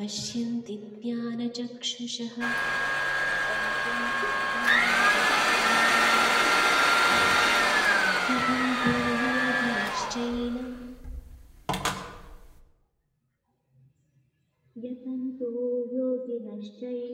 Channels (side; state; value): both; identical; correlation 1.00